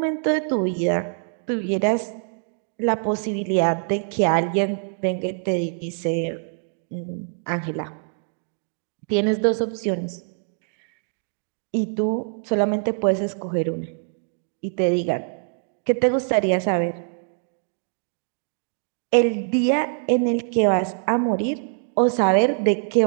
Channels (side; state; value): left; silent; digital silence